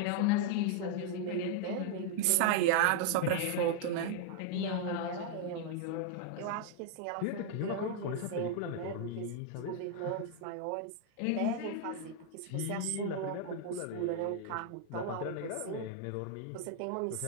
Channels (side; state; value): both; different; correlation 0.00